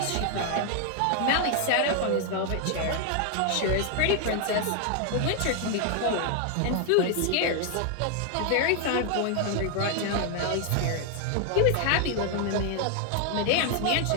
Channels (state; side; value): different; both; correlation 0.00